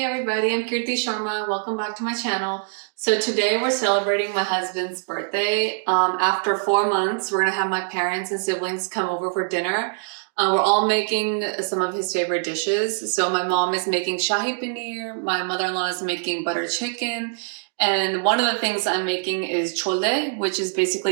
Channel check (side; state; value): left; silent; digital silence